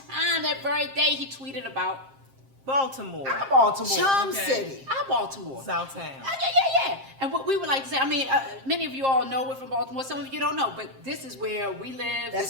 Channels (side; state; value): left; late; 7.5 ms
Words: that very day, he tweeted about Baltimore. our Baltimore. Charm Okay. City. Our Baltimore. Southtown. Yeah. And what we would like to say, I mean, many of you all know we're from Baltimore. Some of you don't know, but this is where we live. That's